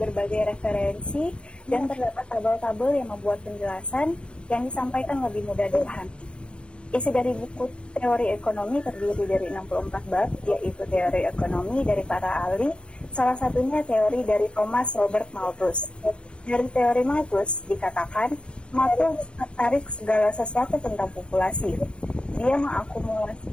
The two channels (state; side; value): late; right; 0.058 ms